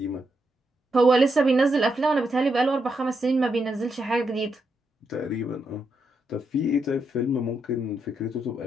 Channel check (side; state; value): both; normal; correlation 0.82